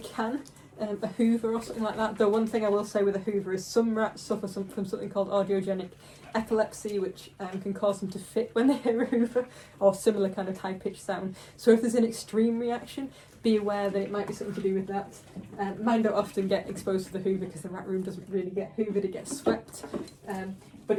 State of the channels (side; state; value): both; identical; correlation 1.00